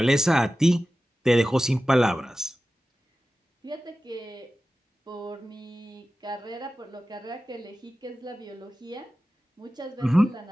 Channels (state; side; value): normal; both; correlation 0.95